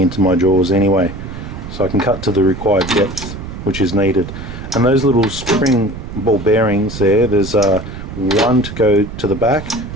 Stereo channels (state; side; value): noise; right; rumble, 10 dB below the sound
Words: my jaws anyway. So I can cut to the required depth which is needed. And those little spring ball bearings there, there's one to go to the back